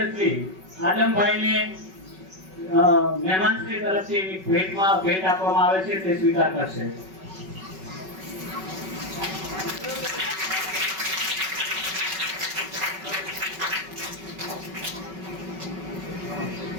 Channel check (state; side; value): late; left; 5.3 ms